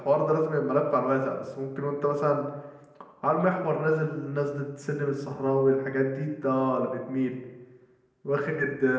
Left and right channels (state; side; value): identical; both; correlation 1.00